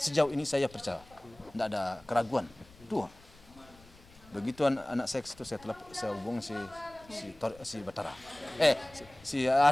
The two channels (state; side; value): noise; left; rumble, 24 dB below the sound